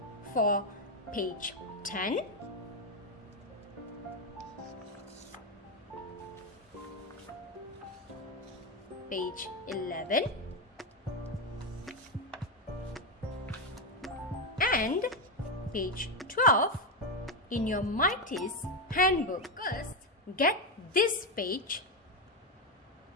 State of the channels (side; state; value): both; normal; correlation 0.08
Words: for page 10, page 11, and page 12 in your Mighty's handbook. First, get this page